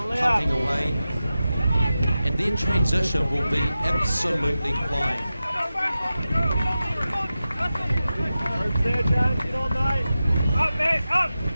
away. And their transition will be absolutely flying.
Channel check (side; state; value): both; inverted; correlation -0.93